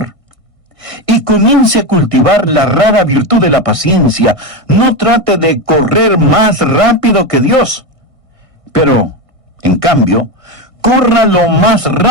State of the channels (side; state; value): left; late; 1.6 ms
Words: Y comience a cultivar la rara virtud de la paciencia. No trate de correr más rápido que Dios. Pero, en cambio, corra lo más